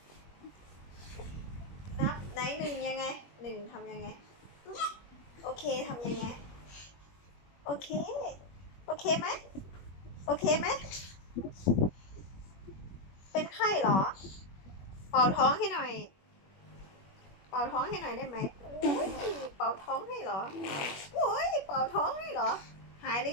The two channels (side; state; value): right; late; 21 ms